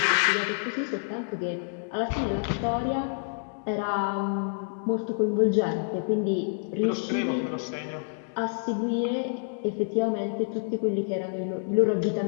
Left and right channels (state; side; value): silent; right; digital silence